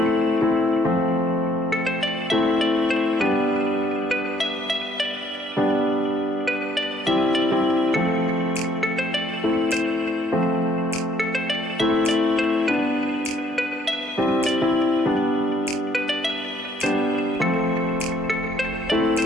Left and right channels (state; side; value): normal; both; correlation 0.65